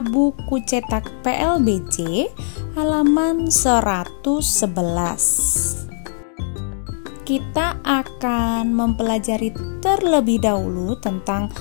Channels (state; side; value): silent; right; digital silence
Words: buku cetak PLBJ halaman 111. Kita akan mempelajari terlebih dahulu tentang